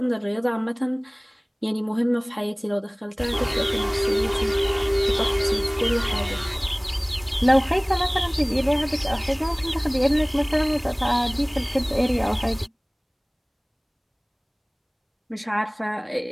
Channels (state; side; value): identical; both; correlation 1.00